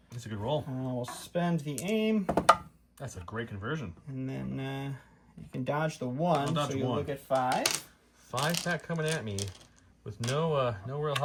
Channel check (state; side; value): identical; both; correlation 1.00